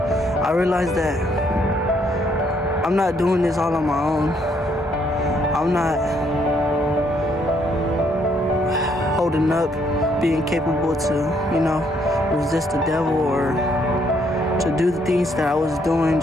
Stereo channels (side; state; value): both; normal; correlation 0.70